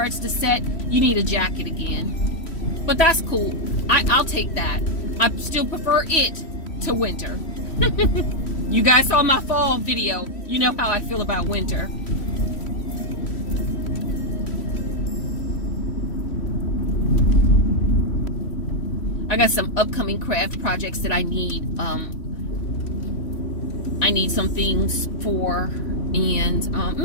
to set, you need a jacket again. But that's cool. I'll take that. I still prefer it to winter. You guys saw my fall video. You know how I feel about winter. I got some upcoming craft projects that I need. I need some things for, and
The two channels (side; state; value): right; late; 3.1 ms